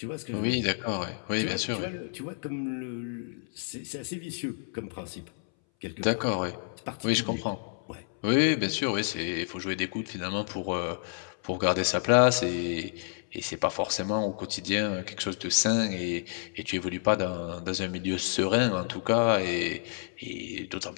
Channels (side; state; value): right; silent; 58 dB below the other